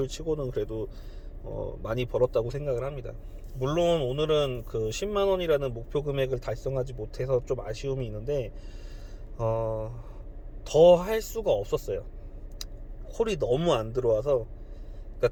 치고는 그래도 많이 벌었다고 생각을 합니다. 물론 오늘은 그 10만원이라는 목표 금액을 달성하지 못해서 좀 아쉬움이 있는데 더 할 수가 없었어요. 콜이 너무 안 들어와서,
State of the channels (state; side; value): identical; both; correlation 1.00